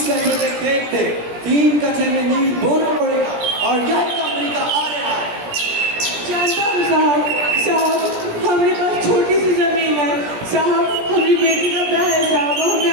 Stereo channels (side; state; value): left; late; 17 ms